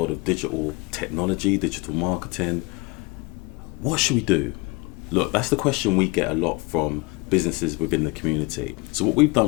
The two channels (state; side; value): quieter; right; 26.1 dB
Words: of digital technology, digital marketing. What should we do? Look, that's the question we get a lot from businesses within the community. So what we've